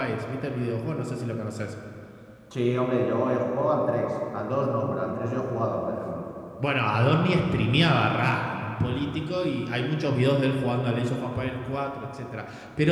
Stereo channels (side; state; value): both; identical; correlation 1.00